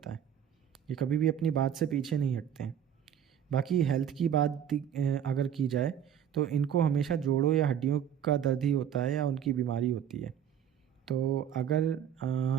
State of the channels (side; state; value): left; quieter; 9.3 dB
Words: है, ये कभी भी अपनी बात से पीछे नहीं हटते हैं। बाकी हेल्थ की बात अगर की जाए तो इनको हमेशा जोड़ों या हड्डियों का दर्द ही होता है या उनकी बीमारी होती है। तो अगर